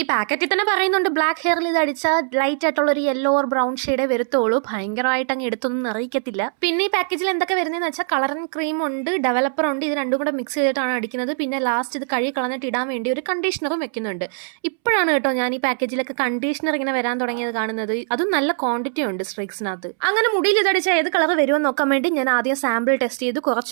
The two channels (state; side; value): silent; left; 65 dB below the other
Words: പാക്കറ്റിൽ തന്നെ പറയുന്നുണ്ട് ബ്ലാക്ക് ഹെയറിൽ ഇത് അടിച്ചാൽ ലൈറ്റ് ആയിട്ടുള്ള ഒരു യെല്ലോ ഓർ ബ്രൗൺ ഷെയ്ഡേ വരുത്തുള്ളൂ. ഭയങ്കരമായിട്ട് അങ്ങ് എടുത്തൊന്നും അറിയിക്കത്തില്ല. പിന്നെ ഈ പാക്കേജിൽ എന്തൊക്കെ വരുന്നതെന്ന് വെച്ചാൽ കളറിംഗ് ക്രീം ഉണ്ട്, ഡെവലപ്പർ ഉണ്ട്. ഇത് രണ്ടും കൂടെ മിക്സ് ചെയ്തിട്ടാണ് അടിക്കുന്നത്. പിന്നെ ലാസ്റ്റ് ഇത് കഴുകി കളഞ്ഞിട്ട് ഇടാൻ വേണ്ടി ഒരു കണ്ടീഷണറും വെക്കുന്നുണ്ട്. ഇപ്പോഴാണ് കേട്ടോ ഞാൻ ഈ പാക്കേജിലൊക്കെ കണ്ടീഷണർ ഇങ്ങനെ വരാൻ തുടങ്ങിയത് കാണുന്നത്. അതും നല്ല ക്വാണ്ടിറ്റി ഉണ്ട് സ്ട്രിക്സിനകത്ത്. അങ്ങനെ മുടിയിൽ ഇതടിച്ചാൽ ഏത് കളർ വരുമെന്ന് നോക്കാൻ വേണ്ടി ഞാൻ ആദ്യം സാമ്പിൾ ടെസ്റ്റ് ചെയ്ത്